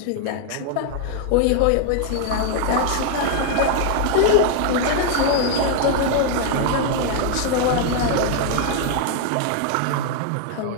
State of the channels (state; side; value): different; both; correlation 0.00